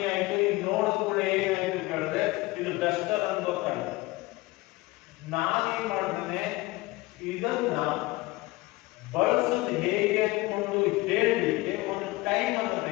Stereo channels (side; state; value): right; quieter; 20.9 dB